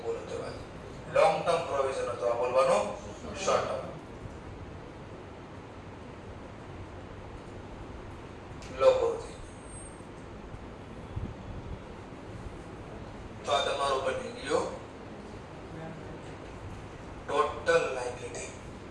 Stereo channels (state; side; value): identical; both; correlation 1.00